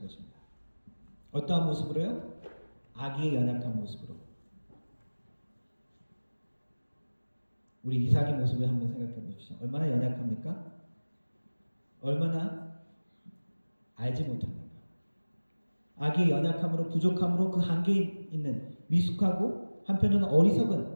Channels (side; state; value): both; inverted; correlation -1.00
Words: 것입니다. 어떠한 모습으로요? 아기의 연약한 모습으로. 우리 이삭의 모습을 한번 생각해 보십시오. 얼마나 연약합니까? 얼마나 알지 못합니까? 아기의 연약함으로 부족함으로 그 한계에 있는 미숙하고 한편으로는